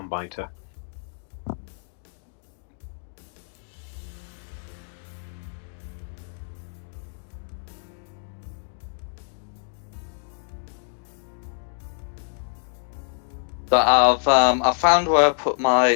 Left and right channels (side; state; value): right; silent; digital silence